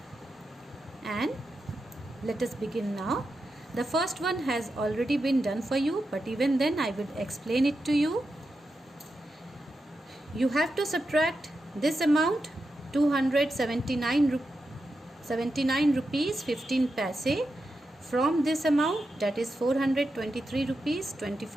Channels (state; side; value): normal; both; correlation 0.88